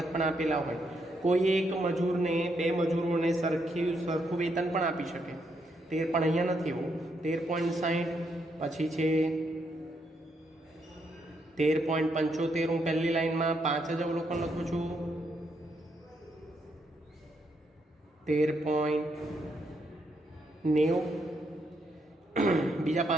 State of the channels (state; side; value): normal; both; correlation 0.77